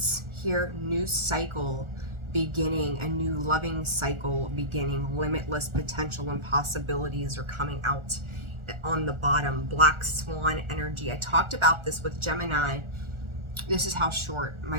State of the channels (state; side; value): late; left; 1.4 ms